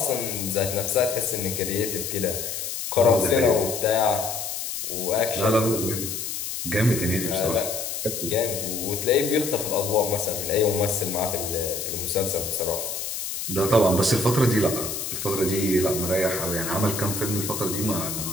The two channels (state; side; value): noise; left; hiss, 5 dB below the sound